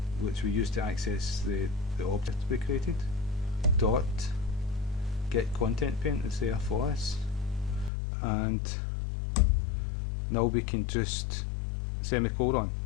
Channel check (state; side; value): drops out; right; at 7.9 s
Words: which we use to access the object we created, dot getContentPane is there for us, and now we can just semicolon.